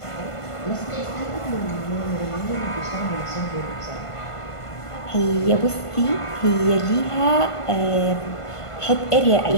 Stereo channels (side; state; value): right; late; 1.5 ms